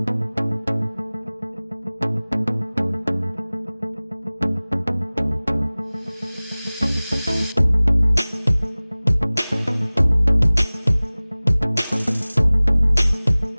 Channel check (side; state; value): both; inverted; correlation -0.99